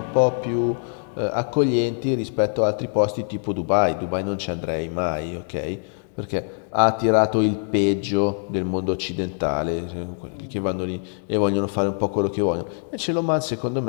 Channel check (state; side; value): silent; right; 63 dB below the other